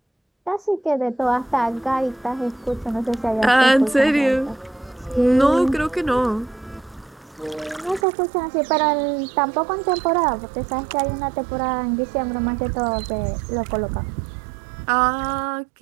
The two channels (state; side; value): drops out; left; at 8.1 s